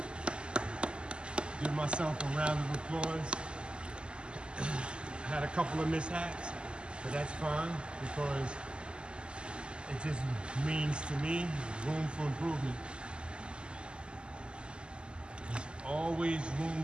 Give myself a round of applause. I had a couple of mishaps, but that's fine because it just means to me room for improvement. There's always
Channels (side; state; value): left; late; 0.050 ms